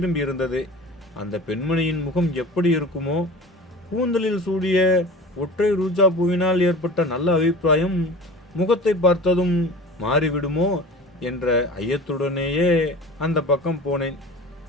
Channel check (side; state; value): both; normal; correlation 0.38